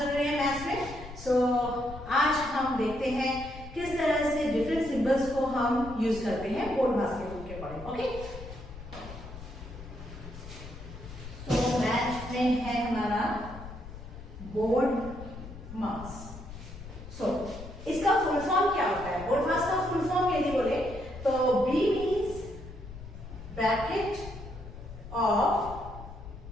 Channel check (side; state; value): left; noise; rumble, 13 dB below the sound